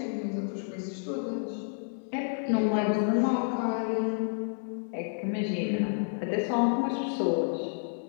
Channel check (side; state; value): right; silent; digital silence